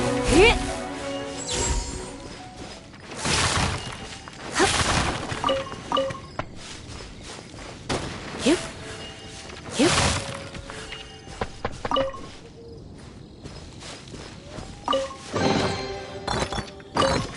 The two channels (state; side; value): identical; both; correlation 1.00